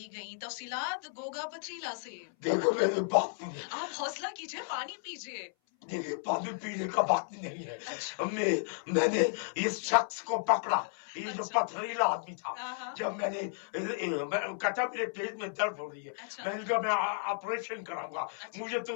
गईं। तफसीलात गोगा पथरीला से। देखो मेरे बाप आप हौसला कीजिए, पानी पीजिए। देखिए पानी पीने का वक्त नहीं है। अच्छा। मैंने इस शख्स को पकड़ा, ये जो अच्छा। पथरीला आदमी था। जब मैंने कहता मेरे पेट में दर्द हो रही है। अच्छा। मैंने कहा मैं ऑपरेशन कराऊंगा। अच्छा। मुझे तो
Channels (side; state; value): right; silent; 55 dB below the other